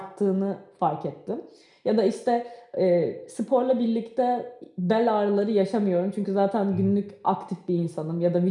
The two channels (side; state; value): both; identical; correlation 1.00